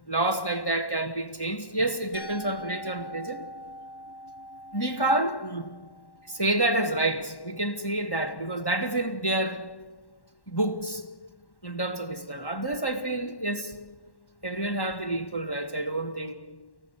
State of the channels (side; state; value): right; late; 1.1 ms